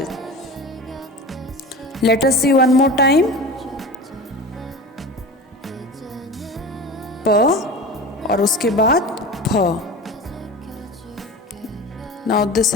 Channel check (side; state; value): both; normal; correlation 0.32